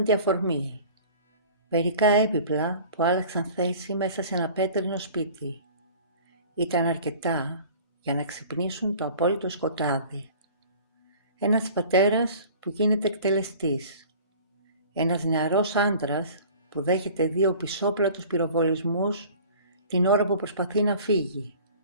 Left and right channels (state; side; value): inverted; both; correlation -0.45